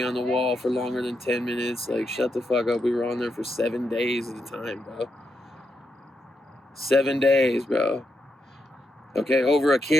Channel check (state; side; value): normal; both; correlation 0.83